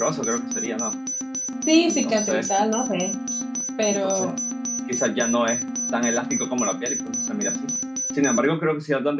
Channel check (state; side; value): identical; both; correlation 1.00